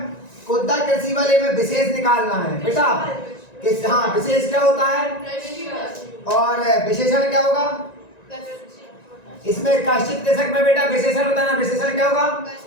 कुद्दा कृषि वाले में विशेष निकालना है बेटा। किस, हाँ विशेष क्या होता है और विशेषण क्या होगा? इसमें कश्चित कृषक में बेटा विशेषण होता है ना, विशेषण क्या होगा?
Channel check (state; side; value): late; right; 1.9 ms